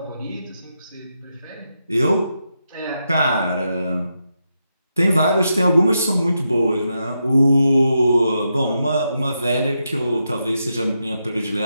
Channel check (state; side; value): inverted; both; correlation -0.85